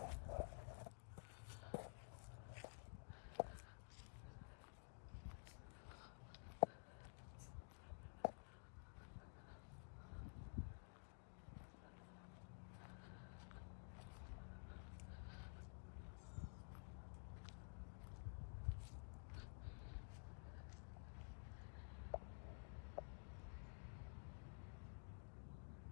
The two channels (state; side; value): silent; right; digital silence